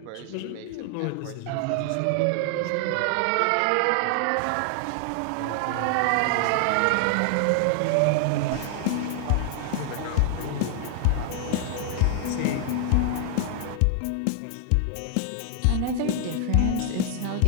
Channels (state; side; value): different; both; correlation 0.00